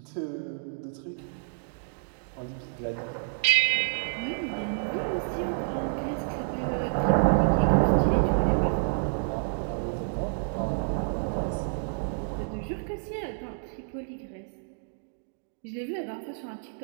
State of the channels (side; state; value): left; silent; digital silence